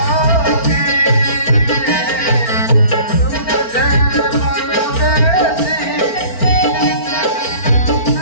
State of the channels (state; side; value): late; right; 4.4 ms